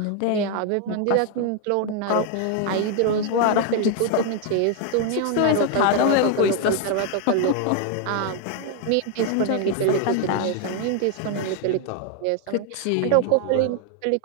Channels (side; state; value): both; different; correlation 0.00